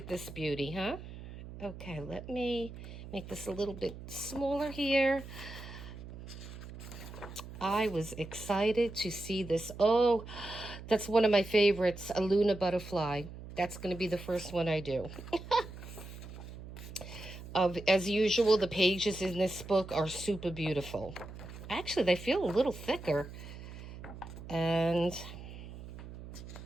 this beauty, huh? Okay, let me make this a little bit smaller here. I was excited to see this. Oh, that's one of my favorites, a Luna butterfly. That's going to be the first one I do. As usual, the pages in this book are super beautiful. Actually, they feel a little thicker. And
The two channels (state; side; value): noise; right; hum, 13 dB below the sound